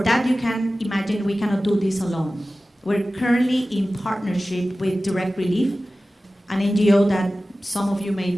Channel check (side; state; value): both; normal; correlation 0.96